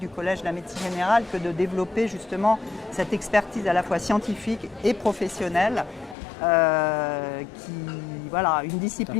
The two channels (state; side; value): drops out; right; at 6.2 s